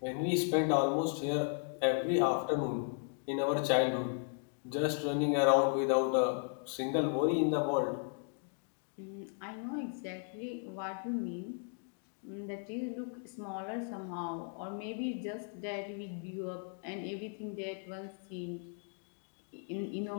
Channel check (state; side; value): silent; right; 54 dB below the other